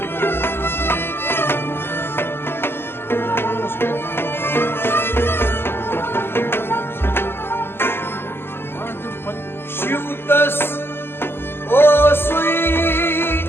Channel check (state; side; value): late; right; 0.11 ms